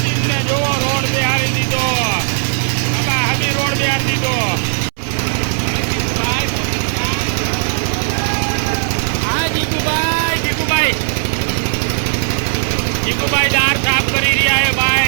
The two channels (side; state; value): left; silent; 69 dB below the other